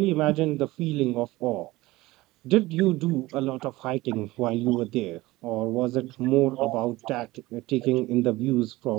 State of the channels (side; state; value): left; quieter; 19.2 dB